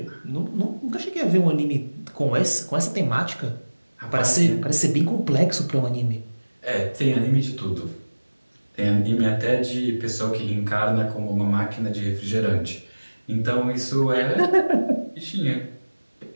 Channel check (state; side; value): inverted; both; correlation -1.00